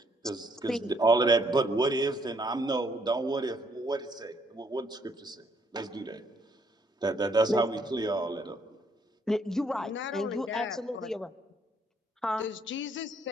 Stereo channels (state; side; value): normal; both; correlation 0.69